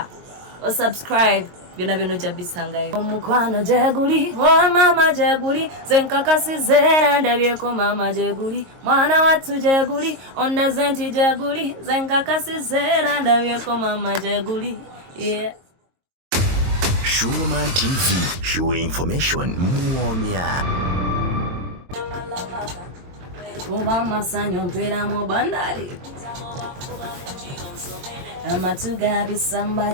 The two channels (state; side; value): late; left; 22 ms